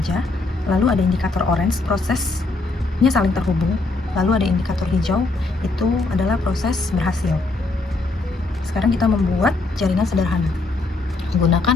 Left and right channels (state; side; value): quieter; right; 3.3 dB